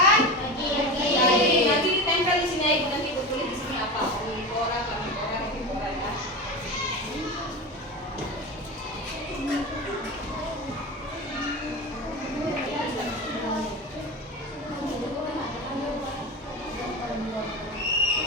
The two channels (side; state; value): both; normal; correlation 0.25